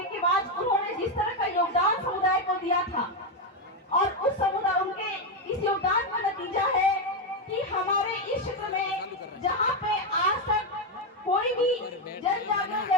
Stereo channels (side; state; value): both; normal; correlation 0.07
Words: के बाद उन्होंने जिस तरह का योगदान समुदाय को दिया था और उस समुदाय उनके इस योगदान का नतीजा है कि हमारे इस क्षेत्र में जहाँ पे आज तक कोई भी जन जागरण